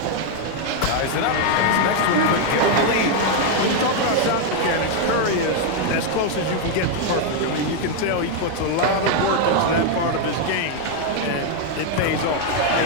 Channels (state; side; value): different; both; correlation 0.01